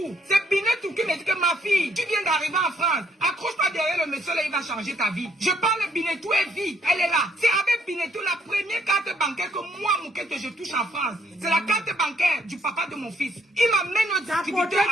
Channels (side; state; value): both; normal; correlation 0.69